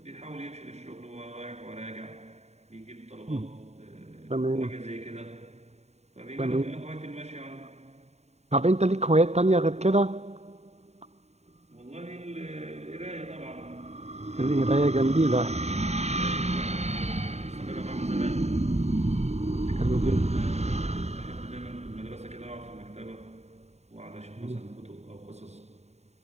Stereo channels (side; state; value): left; late; 0.32 ms